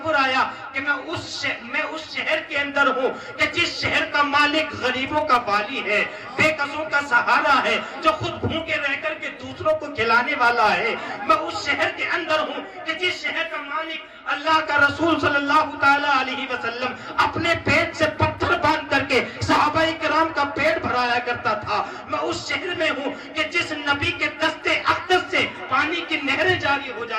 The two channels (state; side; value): identical; both; correlation 1.00